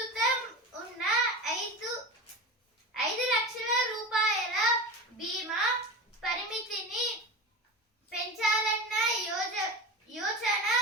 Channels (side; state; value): both; normal; correlation 0.27